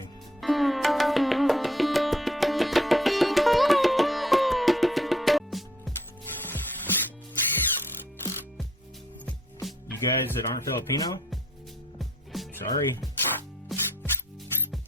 You guys that aren't Filipino, sorry.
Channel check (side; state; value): both; normal; correlation 0.64